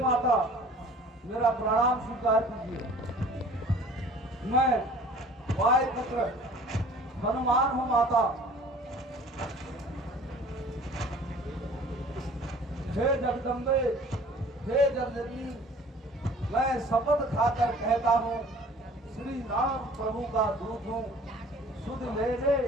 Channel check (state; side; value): normal; both; correlation 0.49